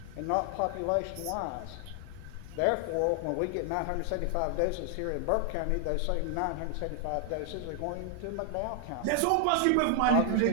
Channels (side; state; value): both; different; correlation 0.00